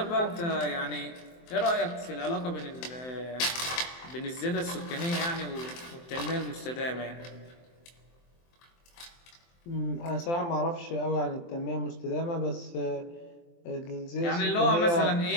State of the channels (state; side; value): late; right; 23 ms